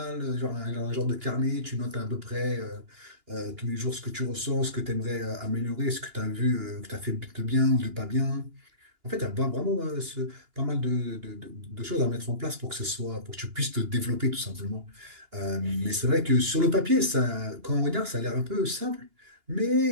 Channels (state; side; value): late; left; 2.9 ms